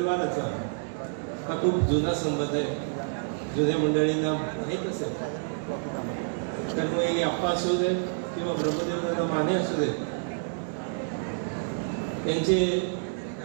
हा खूप जुना संबंध आहे. जुन्या मंडळींना माहीत असेल तर मग आप्पा असू दे किंवा ब्रह्मदेव माने असू दे यांचे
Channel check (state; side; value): silent; left; 59 dB below the other